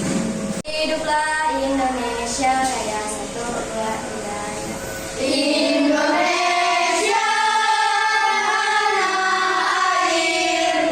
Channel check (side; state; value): both; identical; correlation 1.00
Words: Hiduplah Indonesia yang satu wilayah. Indonesia tanah